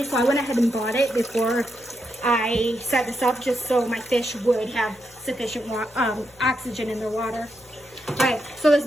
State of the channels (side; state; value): left; noise; hum, 29 dB below the sound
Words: so I went ahead and bought it before I set this up, just so my fish would have sufficient oxygen in their water. All right, so this